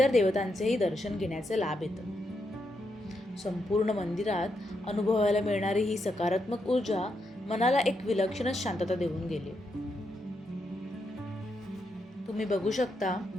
देवतांचेही दर्शन घेण्याचे लाभ येतं. संपूर्ण मंदिरात अनुभवायला मिळणारी ही सकारात्मक ऊर्जा मनाला एक विलक्षणच शांतता देऊन गेली. तुम्ही बघू शकता,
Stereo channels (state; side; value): normal; both; correlation 0.82